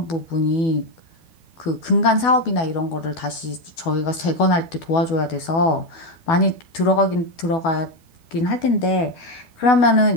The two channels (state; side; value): late; right; 12 ms